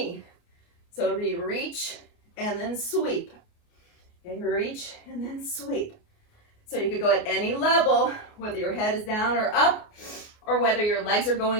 So it'll be reach and then sweep. Okay. Reach and then sweep. So you could go at any level, whether your head is down or up, or whether your legs are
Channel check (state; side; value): late; right; 29 ms